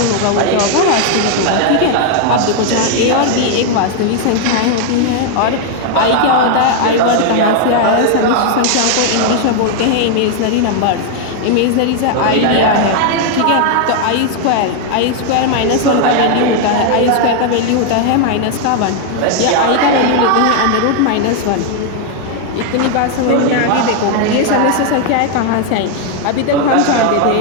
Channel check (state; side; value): different; both; correlation 0.00